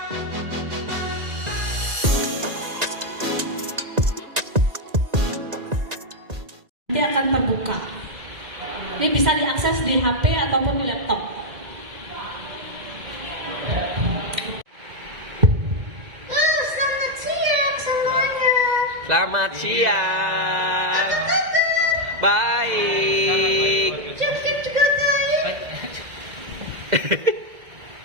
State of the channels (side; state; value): left; late; 1.9 ms